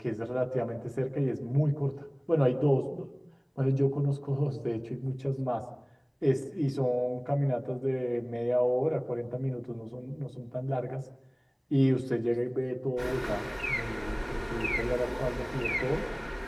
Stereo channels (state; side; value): identical; both; correlation 1.00